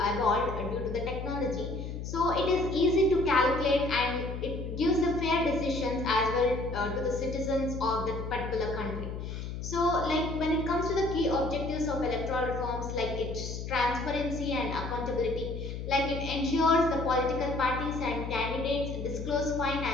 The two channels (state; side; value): noise; left; hum, 6 dB below the sound